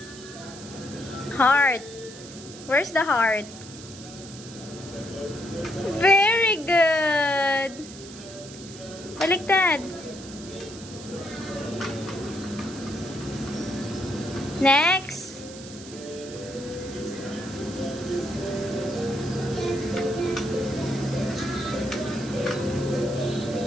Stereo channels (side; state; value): right; noise; hiss, 15 dB below the sound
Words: Heart. Where's the heart? Very good. Baliktad. Next.